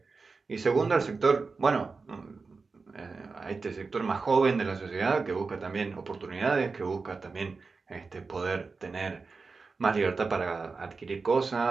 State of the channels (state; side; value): quieter; left; 4.4 dB